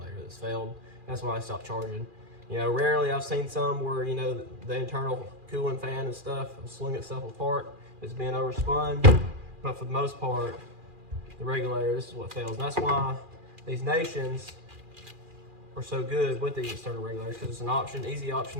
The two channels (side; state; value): left; late; 2.4 ms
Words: that's failed. That's why I stopped charging. Rarely I've seen some where, the internal cooling fan and stuff will swing itself apart. It's being overspun. But for the most part, the regulator, this is what fails. And that's why these Nations are so good with these external regulators, because it's an option, easy